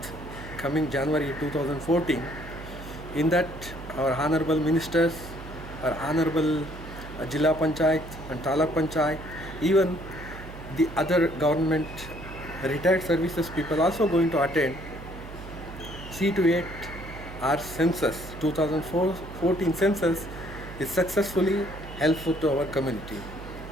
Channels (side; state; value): right; noise; hum, 13 dB below the sound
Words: coming January 2014. In that, our honorable ministers, our honorable Jilla Panchayat and Taluk Panchayat, even the other government retired services people also going to attend. See to it our census, 2014 census is successfully helpful to our community.